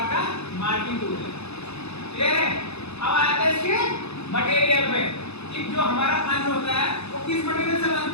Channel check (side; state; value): right; late; 0.80 ms